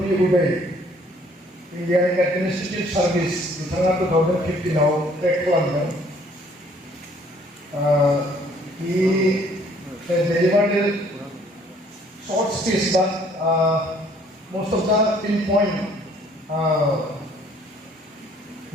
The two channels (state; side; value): normal; both; correlation 0.60